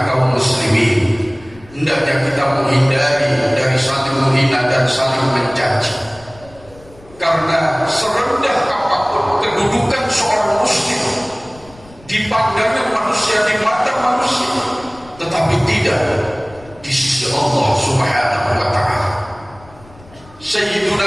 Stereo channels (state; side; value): noise; left; rumble, 23 dB below the sound